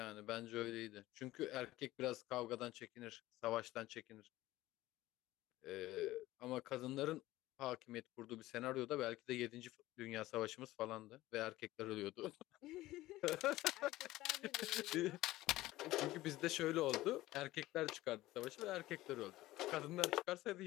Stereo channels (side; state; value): right; quieter; 17.0 dB